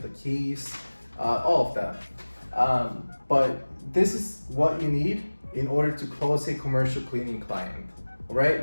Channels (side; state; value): both; inverted; correlation -1.00